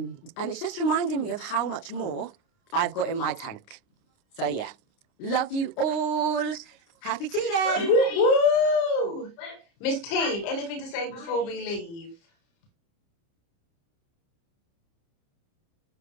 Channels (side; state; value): right; late; 29 ms